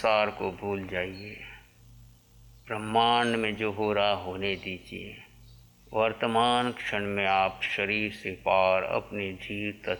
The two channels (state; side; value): identical; both; correlation 1.00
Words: को भूल जाइए। ब्रह्मांड में जो हो रहा होने दीजिए। वर्तमान क्षण में आप शरीर से पार अपने जीव